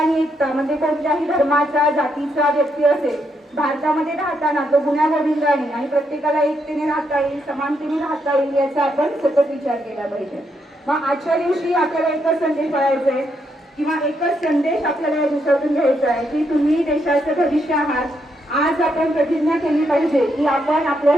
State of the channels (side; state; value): both; normal; correlation 0.78